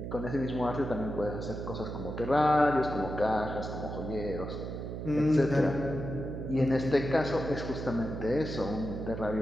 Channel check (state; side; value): noise; right; hum, 6 dB below the sound